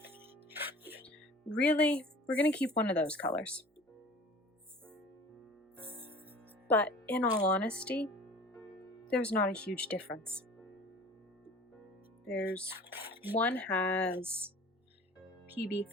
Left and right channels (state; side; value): normal; both; correlation 0.43